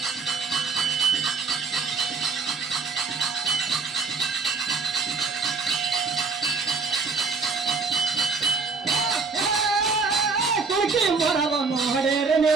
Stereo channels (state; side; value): quieter; left; 4.6 dB